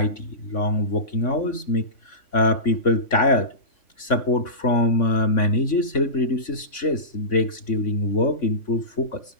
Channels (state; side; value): late; right; 3.5 ms